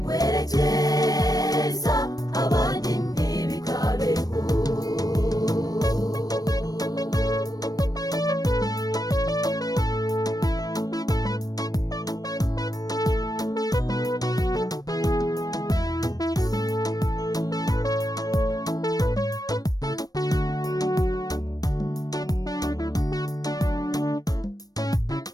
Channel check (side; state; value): right; late; 0.18 ms